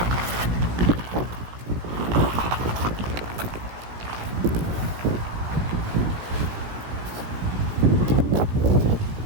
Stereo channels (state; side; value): late; left; 17 ms